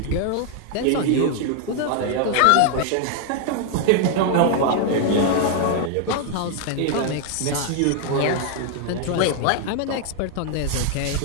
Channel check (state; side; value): different; both; correlation 0.00